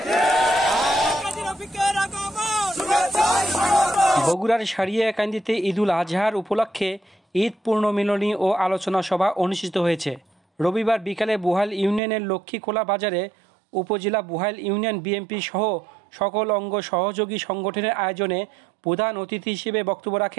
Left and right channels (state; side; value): drops out; left; at 12.0 s